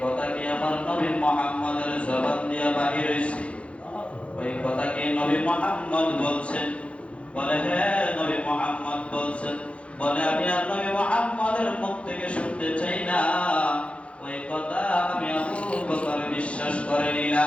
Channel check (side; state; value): right; late; 0.061 ms